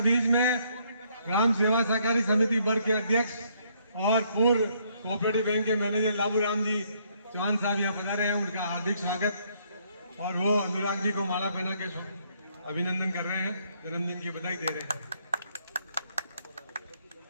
बीच में ग्राम सेवा सहकारी समिति वर्ग के अध्यक्ष और पूर्व कोऑपरेटिव बैंक के मैनेजर लाबू राम जी चौहान साहब यहाँ पधारे हैं, उनका हार्दिक स्वागत। और वो अनुराग जी को माला पहना के अभिनंदन कर रहे हैं, जन्मदिन की बधाई दे रहे हैं।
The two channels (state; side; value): inverted; both; correlation -0.69